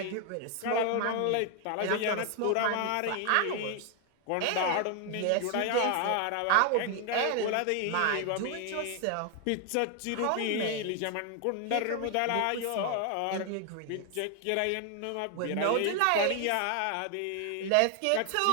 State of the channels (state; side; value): different; both; correlation 0.00